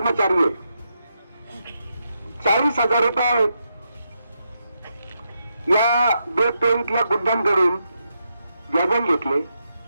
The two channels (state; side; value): inverted; both; correlation -0.83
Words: आहे. 40,000 रुपये या बेट टोळीतल्या गुंडांकडून व्याजाने घेतले.